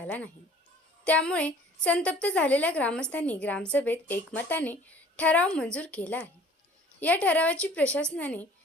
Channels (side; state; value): both; normal; correlation 0.51